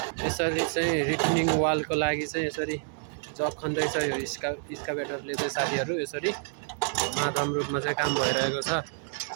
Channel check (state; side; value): silent; left; digital silence